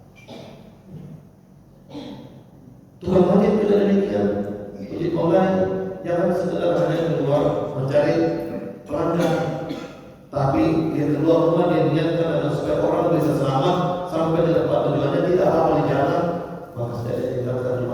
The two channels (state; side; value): identical; both; correlation 1.00